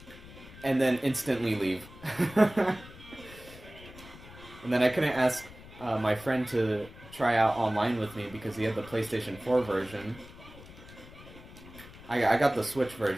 and then instantly leave. And then I couldn't ask my friend to try out online with me because he had the PlayStation 4 version. I got the Switch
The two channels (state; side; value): noise; left; rumble, 18 dB below the sound